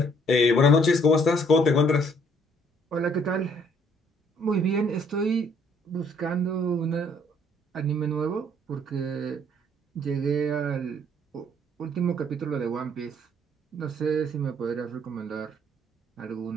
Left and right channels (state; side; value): normal; both; correlation 0.63